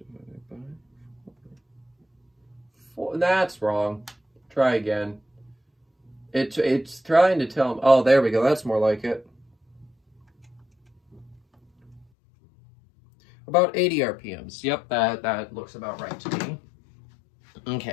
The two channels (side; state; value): right; drops out; at 12.1 s